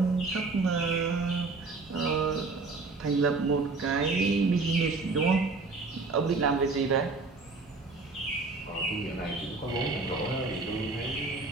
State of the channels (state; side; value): quieter; left; 3.8 dB